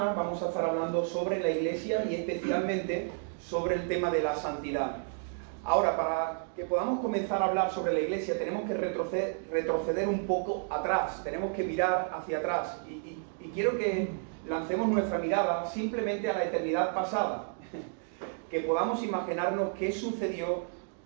vamos a estar hablando sobre la Iglesia y especialmente sobre el tema de la santidad. Ahora, para que podamos comenzar a hablar sobre la Iglesia, tenemos que retroceder un poco atrás, tenemos que mirar hacia atrás. Y quiero que lancemos nuestra mirada simplemente a la eternidad pasada, que podamos imaginarnos qué sucedió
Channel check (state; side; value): silent; left; 57 dB below the other